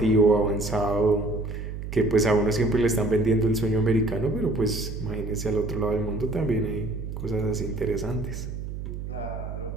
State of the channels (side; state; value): right; noise; hum, 7 dB below the sound